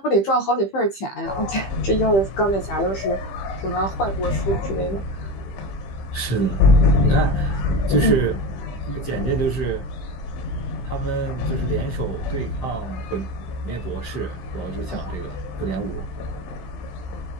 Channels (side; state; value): right; late; 15 ms